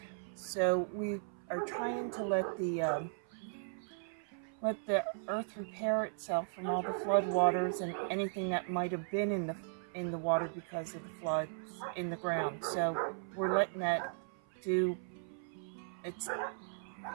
So we are trying to let the earth repair itself from all the flood waters and anything that might have been in the water because of the floods in the ground. So we're letting that do its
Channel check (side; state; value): left; silent; 53 dB below the other